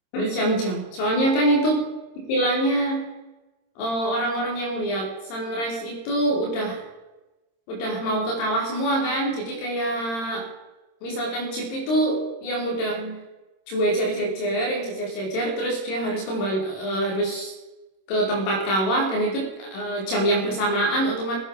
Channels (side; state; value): right; late; 26 ms